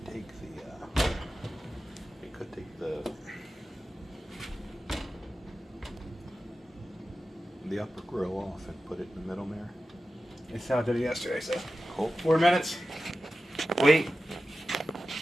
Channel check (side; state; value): both; normal; correlation 0.93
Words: take the upper grill off and put it in the middle there. That's how I did it yesterday. So Cool. 4 minutes. Wait.